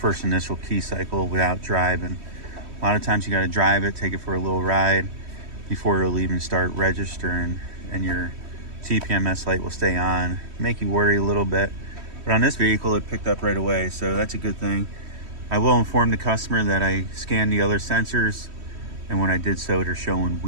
initial key cycle without driving. A lot of times you got to drive it, take it for a little ride before it'll even start registering, and your TPMS light will stay on, make you worry a little bit. But on this vehicle, it picked up right away, so that's a good thing. I will inform the customer that I scanned the other sensors, and when I did so, they're showing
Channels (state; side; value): late; left; 3.1 ms